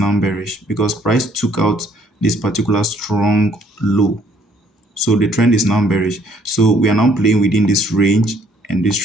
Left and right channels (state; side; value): normal; both; correlation 0.64